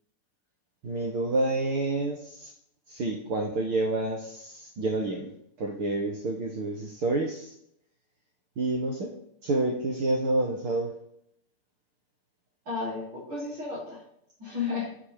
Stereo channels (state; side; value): late; left; 6.8 ms